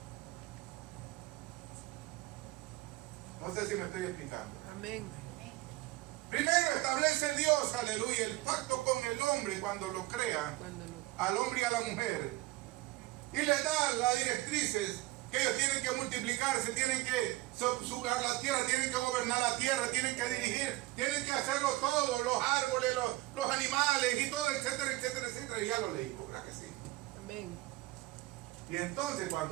No sé si me estoy explicando. Amén. Primero establece Dios, aleluya, el pacto con el hombre cuando lo crea, Cuando lo al hombre y a la mujer. Y le da las directrices que ellos tienen que multiplicarse, tienen que subjugar la tierra, tienen que gobernar la tierra, tienen que dirigir, tienen que hacerlo todo, los árboles, los animales y todo, etcétera, etcétera, etcétera. Y ya lo leí, ¿verdad que sí? Amén. Y entonces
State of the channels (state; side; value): quieter; left; 18.9 dB